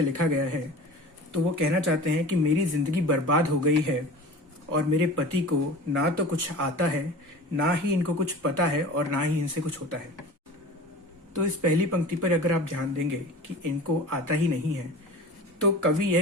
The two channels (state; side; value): normal; both; correlation 0.37